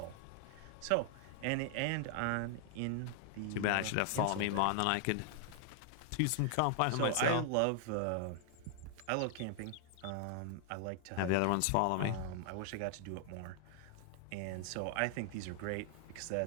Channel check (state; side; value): different; both; correlation 0.00